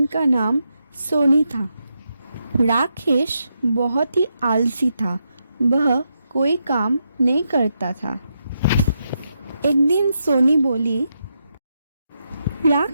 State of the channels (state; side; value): inverted; both; correlation -0.83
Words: का नाम सोनी था। राकेश बहुत ही आलसी था। वह कोई काम नहीं करता था। एक दिन सोनी बोली,